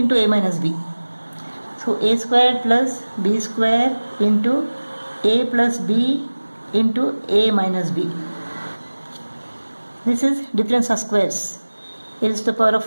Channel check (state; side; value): inverted; both; correlation -1.00